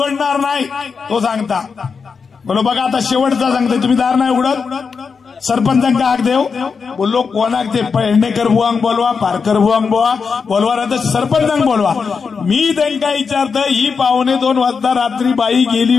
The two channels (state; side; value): quieter; right; 5.5 dB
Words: नाही. तो सांगता बोलो बघा आता शेवटचा सांगते, तुम्ही दार नाही उघडत, सरपंचांका हाक देव. बोललो कोणाक ते पेडणेकर बुवांक बोलवा, पारकर बुवांक बोलवा ना तर सरपंचांक बोलवा. मी त्यांना विचारत ही 1:45 वाजता रात्री बाई गेली